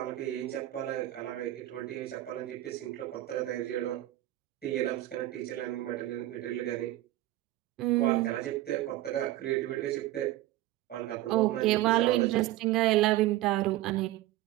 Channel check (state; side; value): quieter; left; 15.6 dB